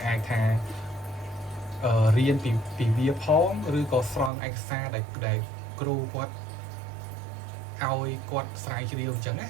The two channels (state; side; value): drops out; left; at 4.3 s